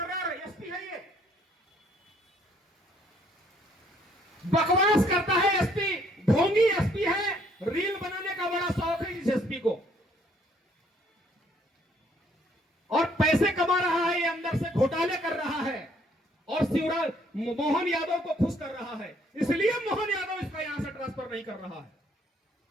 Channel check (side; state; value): both; normal; correlation 0.65